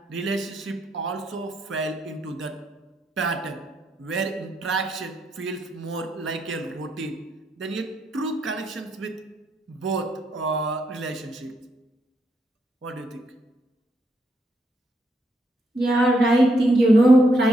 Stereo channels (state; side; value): normal; both; correlation 0.77